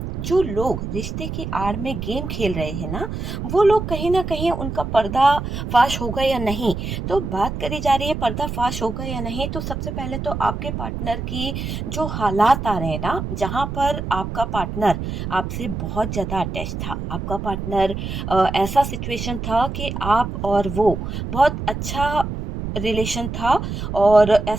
जो लोग रिश्ते की आड़ में गेम खेल रहे हैं ना, वो लोग कहीं ना कहीं उनका पर्दा फाश होगा या नहीं। तो बात करी जा रही है पर्दा फाश होगा या नहीं, तो सबसे पहले तो आपके पार्टनर की जो हालात आ रहे हैं ना, जहां पर आपका पार्टनर आपसे बहुत ज्यादा अटैच था, आपका पार्टनर ऐसा सिचुएशन था कि आप और वो बहुत अच्छा रिलेशन था, और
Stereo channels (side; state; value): right; noise; rumble, 5 dB below the sound